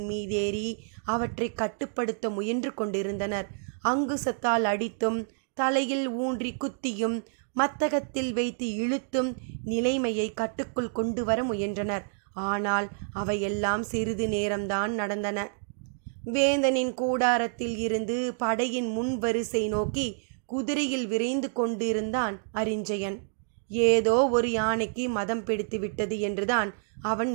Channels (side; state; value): left; silent; digital silence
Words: மீதேறி அவற்றை கட்டுப்படுத்த முயன்று கொண்டிருந்தனர். அங்குசத்தால் அடித்தும் தலையில் ஊன்றி குத்தியும் மத்தகத்தில் வைத்து இழுத்தும் நிலைமையை கட்டுக்குள் கொண்டு வர முயன்றனர். ஆனால் அவையெல்லாம் சிறிது நேரம்தான் நடந்தன. வேந்தனின் கூடாரத்தில் இருந்து படையின் முன் வரிசை நோக்கி குதிரையில் விரைந்து கொண்டிருந்தான் அரிஞ்சயன். ஏதோ ஒரு யானைக்கு மதம் பிடித்து விட்டது என்றுதான் அவன்